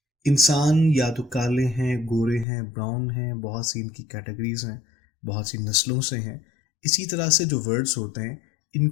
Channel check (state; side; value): drops out; right; at 2.5 s